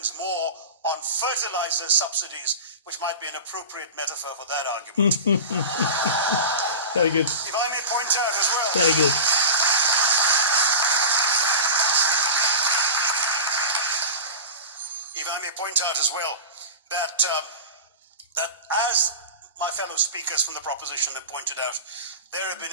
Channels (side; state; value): both; inverted; correlation -0.30